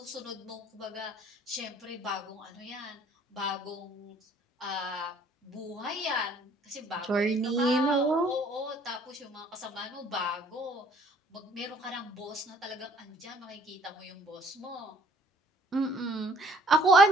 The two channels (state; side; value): normal; both; correlation 0.59